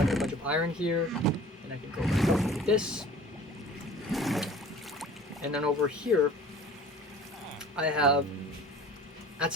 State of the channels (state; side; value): normal; both; correlation 0.45